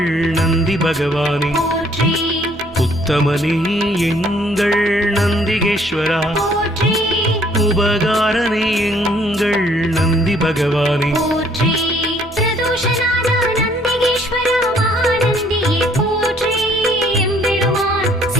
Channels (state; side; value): normal; both; correlation 0.62